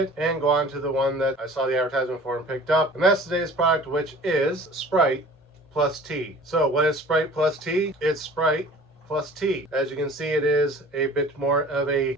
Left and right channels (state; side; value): normal; both; correlation 0.46